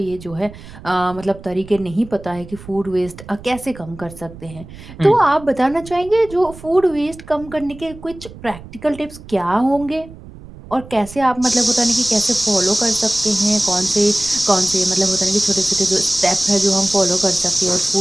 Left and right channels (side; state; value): right; noise; rumble, 17 dB below the sound